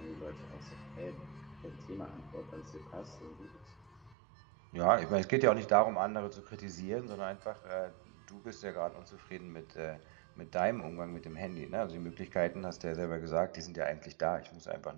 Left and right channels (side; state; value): left; drops out; at 4.2 s